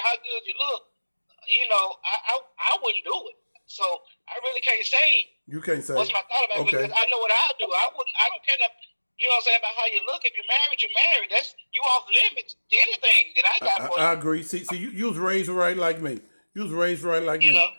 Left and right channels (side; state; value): both; inverted; correlation -1.00